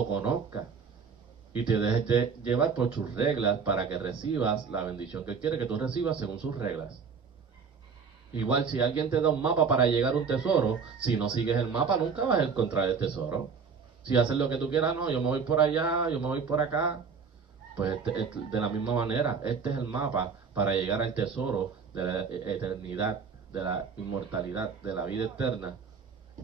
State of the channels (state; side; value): quieter; left; 5.7 dB